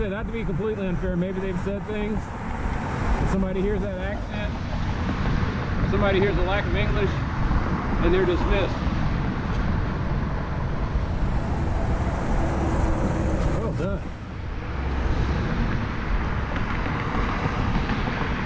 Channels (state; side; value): identical; both; correlation 1.00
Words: not to be completely unfair, maybe they've said things. If somebody hears that accent, if somebody hears the lack of English, and they're dismissed. Well done.